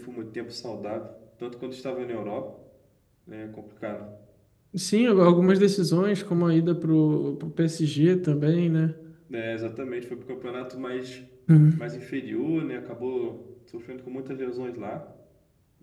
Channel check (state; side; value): identical; both; correlation 1.00